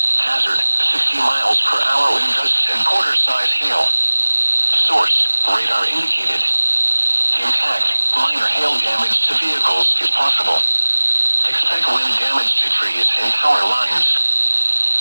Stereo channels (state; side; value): inverted; both; correlation -1.00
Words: Hazard, 60 miles per hour wind gusts and quarter-size hail. Source, radar indicated. Intact, minor hail damage to vehicles is possible. Expect wind damage to trees and power lines.